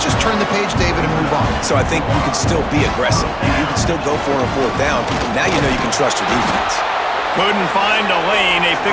just turn the page, David, and move on. So I think you can still be aggressive. You can still go for it on 4th down. Now you know you can trust your defense. Couldn't find a lane. A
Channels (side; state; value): both; identical; correlation 1.00